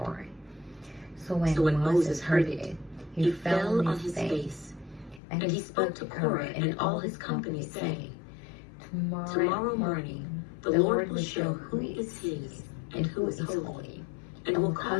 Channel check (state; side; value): drops out; right; at 5.2 s